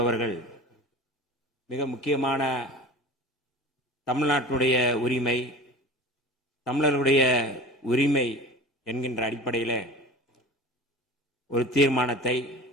மிக முக்கியமான தமிழ்நாட்டுடைய உரிமை, தமிழர்களுடைய உரிமை என்கின்ற அடிப்படையில் ஒரு தீர்மானத்தை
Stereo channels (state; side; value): normal; both; correlation 0.36